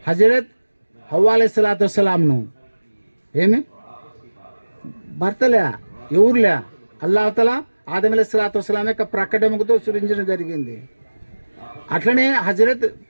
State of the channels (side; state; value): both; inverted; correlation -1.00